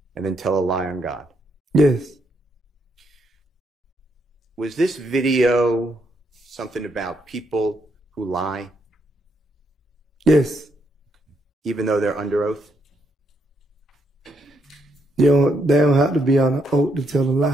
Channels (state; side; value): normal; both; correlation 0.77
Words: and then tell a lie on God? Yes. Was this video something about people who lie, Yes. even though they're under oath? They don't have to be on an oath to tell a